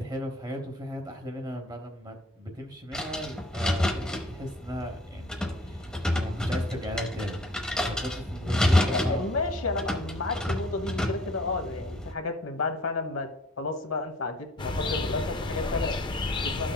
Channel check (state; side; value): normal; both; correlation 0.54